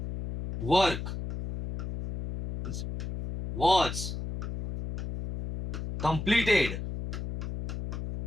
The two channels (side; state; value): left; noise; hum, 6 dB below the sound